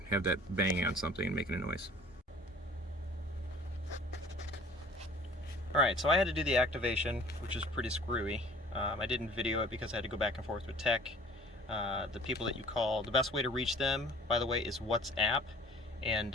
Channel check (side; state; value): both; normal; correlation 0.49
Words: have that banging on something and making a noise. Alright, so I had to do the activation, which is pretty screwy. I didn't video it because I had to go back and forth with tech. The people that you call, the best way to reach them, by the way, is WhatsApp.